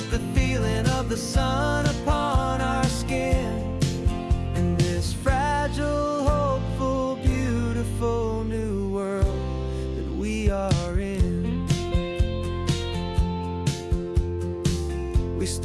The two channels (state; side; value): identical; both; correlation 1.00